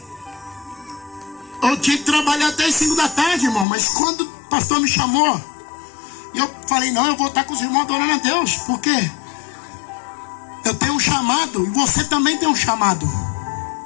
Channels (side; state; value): right; drops out; at 3.7 s